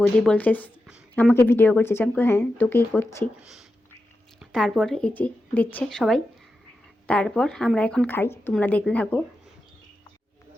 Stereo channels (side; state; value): both; normal; correlation 0.90